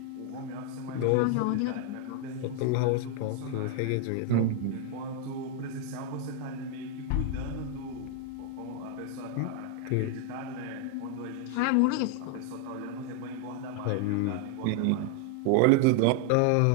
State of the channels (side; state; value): both; different; correlation 0.00